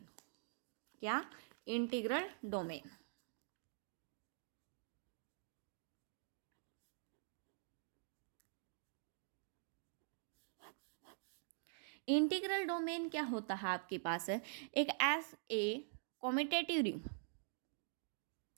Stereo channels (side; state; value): left; silent; digital silence